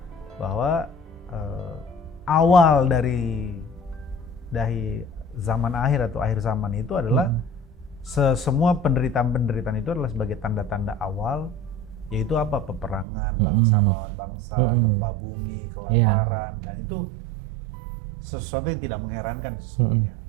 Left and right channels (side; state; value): left; drops out; at 13.1 s